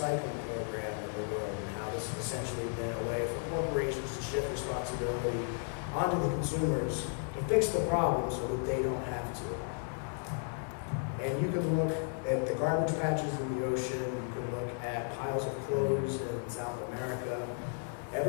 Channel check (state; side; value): silent; right; 55 dB below the other